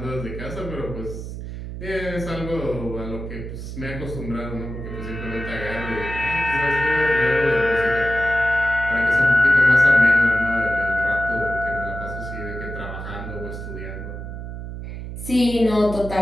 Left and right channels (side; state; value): right; noise; hum, 8 dB below the sound